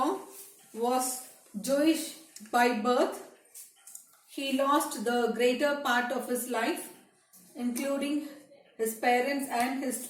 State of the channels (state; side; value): identical; both; correlation 1.00